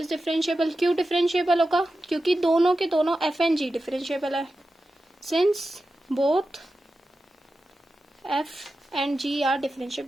differentiable क्यों डिफरेंशिएबल होगा, क्योंकि दोनों के दोनों एफ एंड जी डिफरेंशिएबल है, since both f and g are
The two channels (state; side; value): normal; both; correlation 0.92